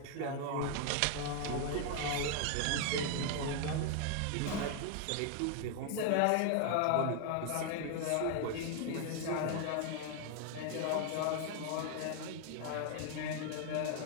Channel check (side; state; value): both; different; correlation 0.00